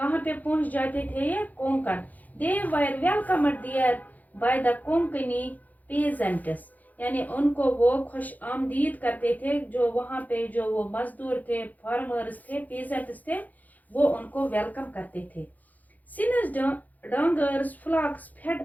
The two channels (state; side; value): late; right; 0.080 ms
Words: पे पहुंच जाते थे? ये Konkan. They were welcomed there by the Konkani peasants, यानी उनको वो खुश आमदीद करते थे, जो वहाँ पे जो वो मजदूर थे, फार्मर्स थे, peasants थे, वो उनको वेलकम करते थे। Since dungers flocks fed